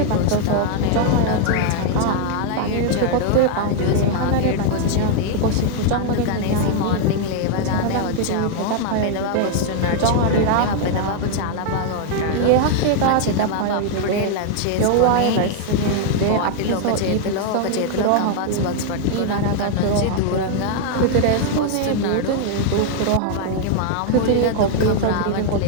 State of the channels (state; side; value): different; both; correlation 0.00